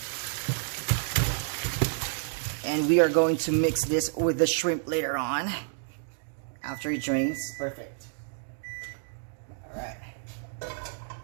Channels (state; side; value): silent; left; digital silence